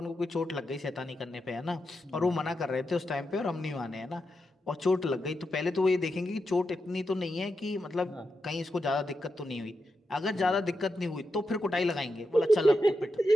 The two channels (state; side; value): normal; both; correlation 0.87